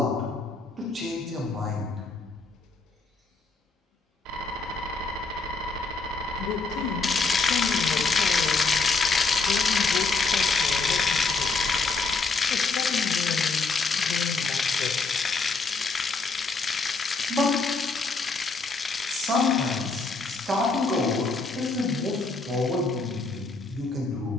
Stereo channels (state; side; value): quieter; right; 3.9 dB